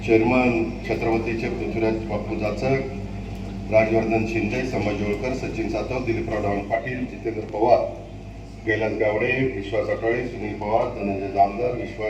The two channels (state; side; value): identical; both; correlation 1.00